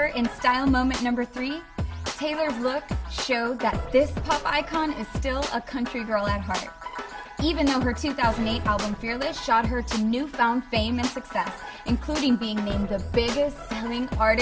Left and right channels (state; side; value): identical; both; correlation 1.00